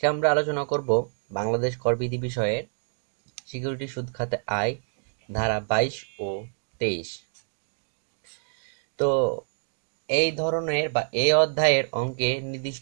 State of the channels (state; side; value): silent; left; 60 dB below the other